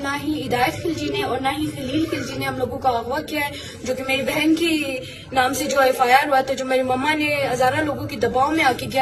نہ ہی ہدایت خلجی نے اور نہ ہی خلیل خلجی نے ہم لوگوں کا اغوا کیا ہے، جو کہ میری بہن کی نام سے جو FIR ہوا تھا، جو میری مما نے ہزارہ لوگوں کے دباؤ میں آ کے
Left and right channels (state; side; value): identical; both; correlation 1.00